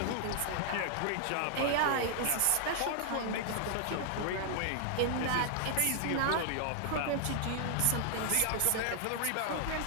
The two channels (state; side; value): different; both; correlation 0.00